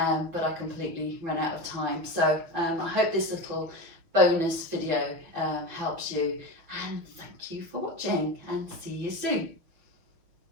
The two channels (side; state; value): left; late; 6.1 ms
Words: but I completely ran out of time. So I hope this little bonus video helps you, and thank you for watching, and see you soon.